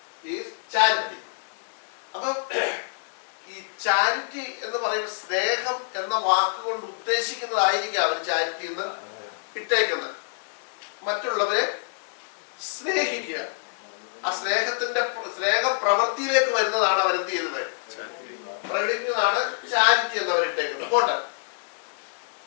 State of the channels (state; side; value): silent; right; digital silence